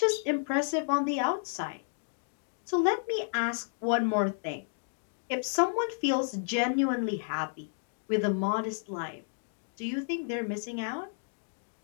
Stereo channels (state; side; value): silent; right; digital silence